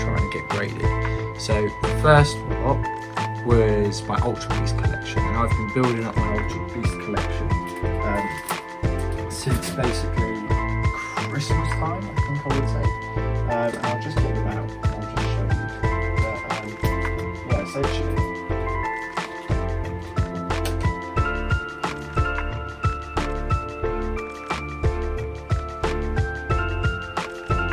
to get graded. So the first lot was my Ultra Beast collection, and I've been building up my Ultra Beast collection since basically Christmas time, I think I would say. And I'll just get them out, I'll just show you. But, yeah,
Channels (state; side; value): identical; both; correlation 1.00